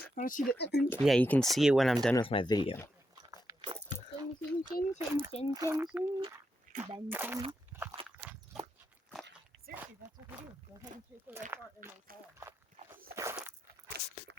want to see the intro. Yeah, you can see it when I'm done with my video. Seriously, that's what we do. Go ahead and take the right part and then call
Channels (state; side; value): normal; both; correlation 0.84